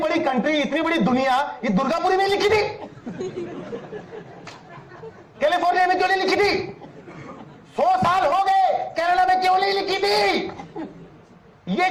कंट्री, इतनी बड़ी दुनिया, ये दुर्गापुरी में लिखी थी, कैलिफोर्निया में क्यों नहीं लिखी थी? 100 साल हो गए, कनाडा में क्यों नहीं लिखी थी? ये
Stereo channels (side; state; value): both; identical; correlation 1.00